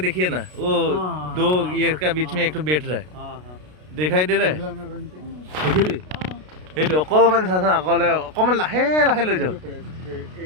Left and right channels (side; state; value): left; late; 33 ms